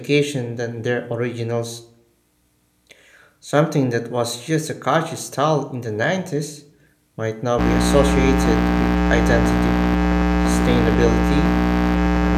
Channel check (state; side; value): identical; both; correlation 1.00